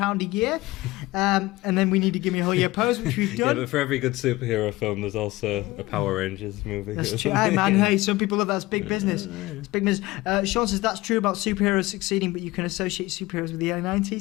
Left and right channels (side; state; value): right; quieter; 19.6 dB